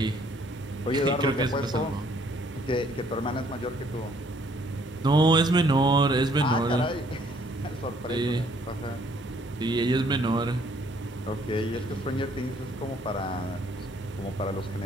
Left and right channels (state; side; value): normal; both; correlation 0.63